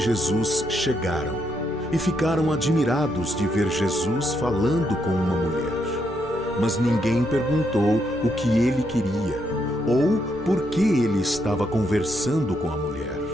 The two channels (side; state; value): both; normal; correlation 0.78